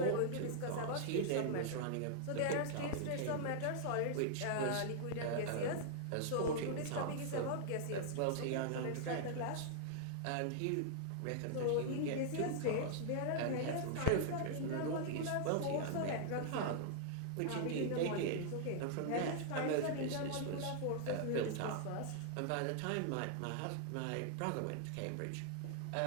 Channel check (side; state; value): both; different; correlation -0.01